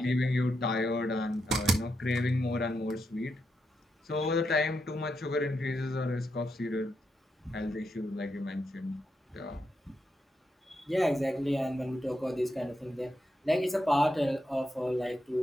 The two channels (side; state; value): both; normal; correlation 0.83